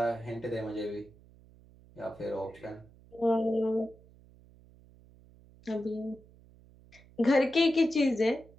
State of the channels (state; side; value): noise; right; hum, 25 dB below the sound